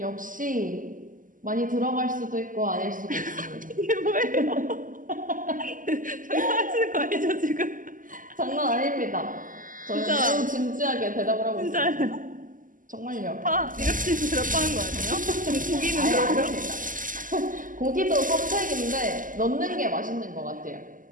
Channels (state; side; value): late; left; 0.38 ms